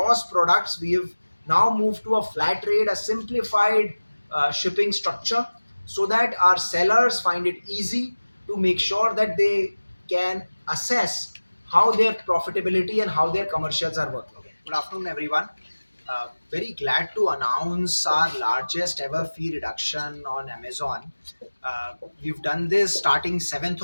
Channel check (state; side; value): inverted; both; correlation -1.00